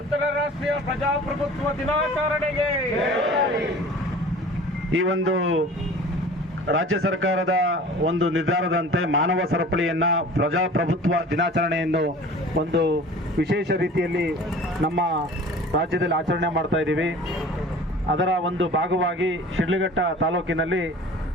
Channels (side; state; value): both; normal; correlation 0.43